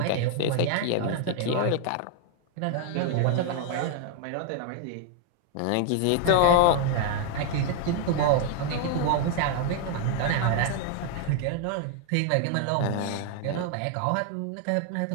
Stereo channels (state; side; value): different; both; correlation 0.00